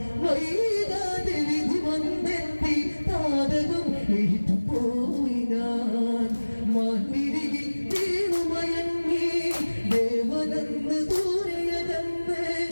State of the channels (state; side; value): inverted; both; correlation -1.00